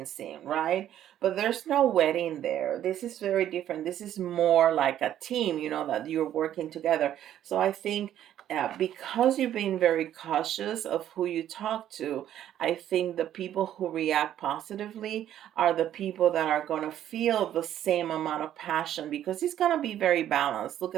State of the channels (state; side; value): quieter; left; 11.4 dB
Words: scene, right? But there's no wedding there. This is very different. This is more like a team, that you're working together. So I think because you've been very cautious of who you talk to, I think the people who react positively are the people that are going to feel the same amount of passion, because it's going to be very balanced. Look